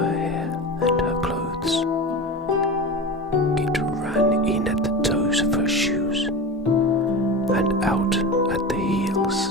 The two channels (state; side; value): normal; both; correlation 0.27